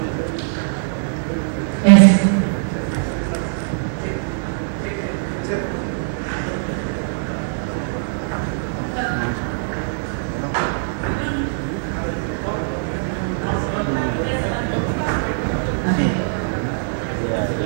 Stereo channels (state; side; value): silent; left; 62 dB below the other